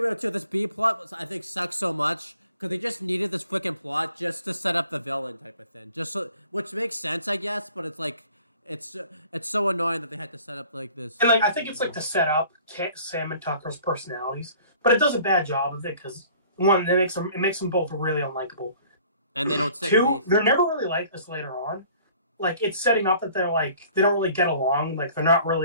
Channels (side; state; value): both; inverted; correlation -0.52